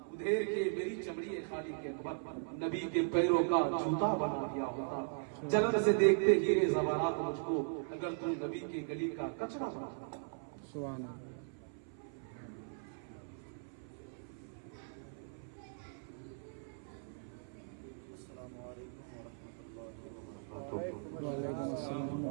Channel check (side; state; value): left; silent; 52 dB below the other